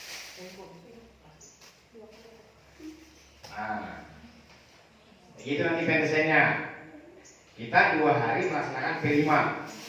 Nah, begitu nanti pendesainnya. Kita 2 hari melaksanakan P5.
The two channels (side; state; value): both; identical; correlation 1.00